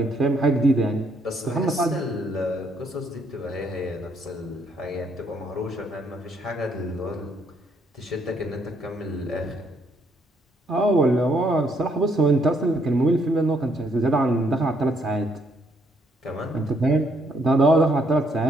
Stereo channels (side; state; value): both; normal; correlation 0.71